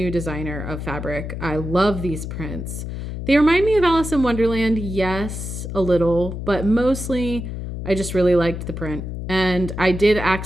designer of fabric. I love these prints. They remind me of Alice in Wonderland, yes, a little, but mostly I just really liked the print. And I did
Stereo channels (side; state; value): left; noise; hum, 6 dB below the sound